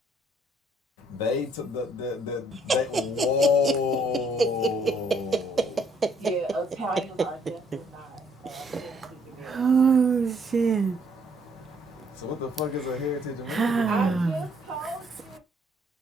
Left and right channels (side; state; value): both; normal; correlation 0.66